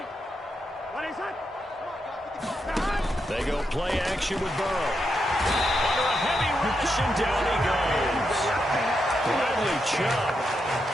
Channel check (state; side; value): normal; both; correlation 0.84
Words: They go play action with Burrow. Under a heavy rush, and down he goes. Bradley Chubb